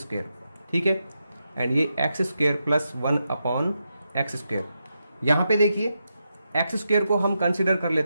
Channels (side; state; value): both; inverted; correlation -0.86